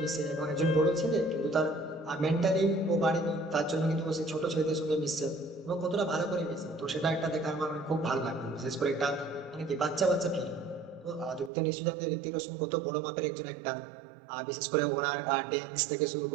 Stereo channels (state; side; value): drops out; left; at 11.5 s